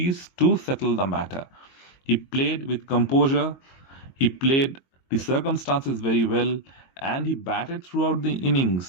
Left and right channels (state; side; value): late; right; 22 ms